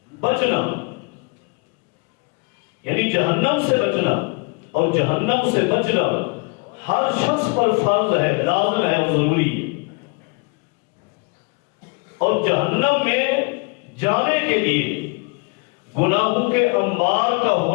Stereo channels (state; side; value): quieter; right; 30.9 dB